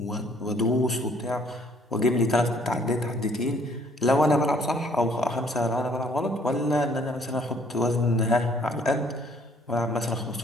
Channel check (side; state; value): both; normal; correlation 0.62